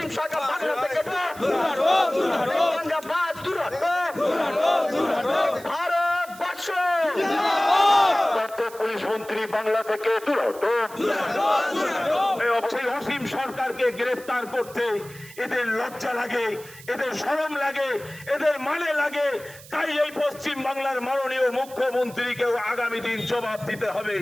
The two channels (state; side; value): noise; right; hiss, 19 dB below the sound